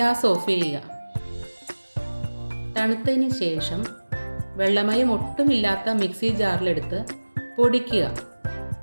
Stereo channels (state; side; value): inverted; both; correlation -1.00